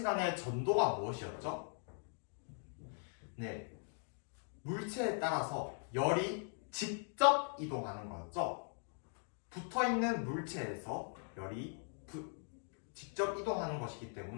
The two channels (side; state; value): right; silent; 51 dB below the other